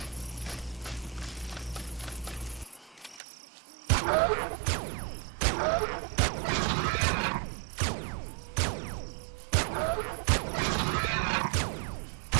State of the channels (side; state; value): left; drops out; at 3.2 s